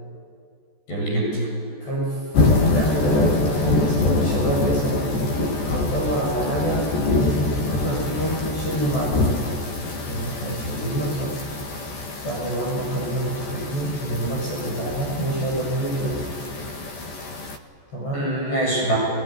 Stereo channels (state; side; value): late; right; 14 ms